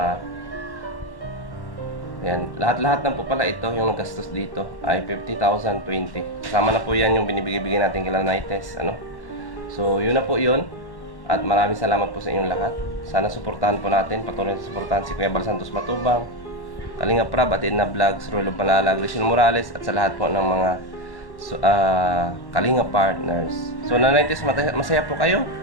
yan, lahat-lahat na po pala ito, yung nagastos dito ay 50,020. Kasama na po yan yung binibigay natin kay Nanay Tess, So, yun na po yun. At maraming salamat po sa inyong lahat. Sana suportahan po natin, patuloy na suportahan si Kuya Bal Santos Matubang, Kalinga Prab, Atin na Vlogs, Rulo Palalag, Rizal Morales, at sa lahat po ng mga Kalinga partners. So, Nanay Tess, masaya po kayo?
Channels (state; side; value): late; right; 1.1 ms